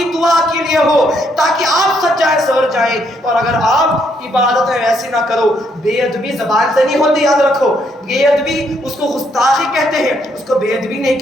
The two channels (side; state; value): both; normal; correlation 0.73